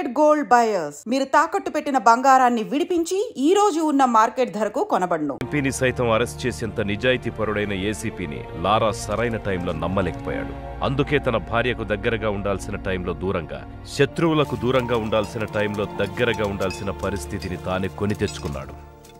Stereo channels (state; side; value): identical; both; correlation 1.00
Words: gold buyers. మీరు తాకట్టు పెట్టిన బంగారాన్ని విడిపించి ఈ రోజు ఉన్న మార్కెట్ ధరకు కొనబడును. ఎంపీని సైతం అరెస్ట్ చేసేంత నిజాయితీ పరుడైన ఏసీపీని లారా సరైన టైంలో నమ్మలేకపోయాడు. అందుకే తన భార్యకు దగ్గరగా ఉండాల్సిన టైంలో దూరంగా, శత్రువులకు దూరంగా ఉండాల్సిన టైంలో దగ్గరగా ఉండాల్సిన పరిస్థితిని తానే కొని తెచ్చుకున్నాడు.